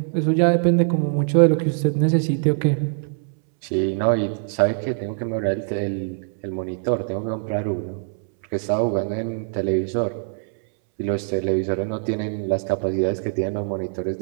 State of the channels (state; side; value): silent; left; 64 dB below the other